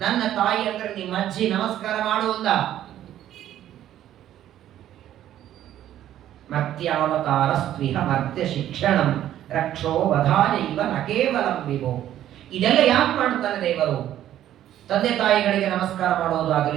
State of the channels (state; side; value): quieter; left; 12.0 dB